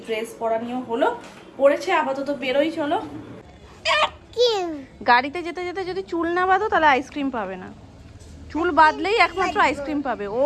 ড্রেস পরা নিয়েও হলো, পরেছে আপাতত বেরোই। চলো, গাড়িতে যেতে যদি চুল না বাঁধো তাহলে আইসক্রিম পাবে না, চুল বাঁধলেই একমাত্র আইসক্রিম পাবে। ও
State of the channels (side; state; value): both; identical; correlation 1.00